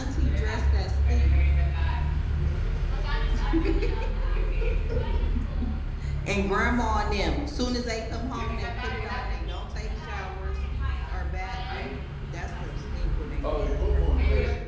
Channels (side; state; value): both; identical; correlation 1.00